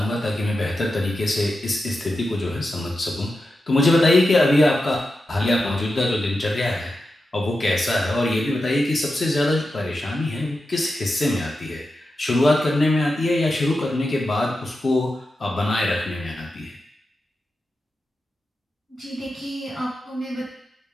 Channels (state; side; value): normal; both; correlation 0.90